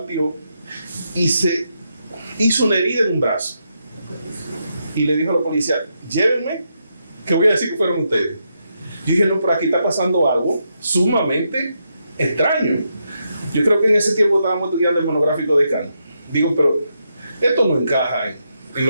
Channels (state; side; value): inverted; both; correlation -0.82